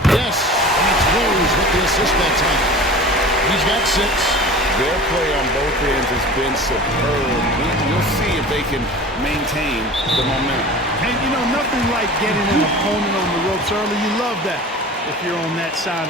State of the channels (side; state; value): both; normal; correlation 0.38